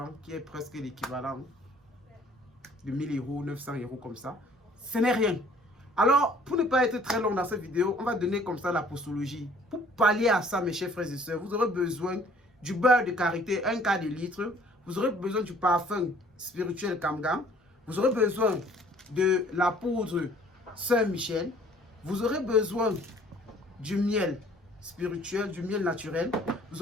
qui est presque l'équivalent de 1000 euros, 900 euros comme ça. Ce n'est rien. Alors, pour ne pas être très long dans cette vidéo, on va donner comme ça la posologie. Pour pallier à ça, mes chers frères et sœurs, vous aurez besoin du beurre de karité, 1 quart de litre. Vous aurez besoin du parfum spirituel Kamgang. Vous aurez besoin de la poudre Saint-Michel. Vous aurez besoin du miel spirituel, du miel naturel.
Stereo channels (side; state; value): both; normal; correlation 0.56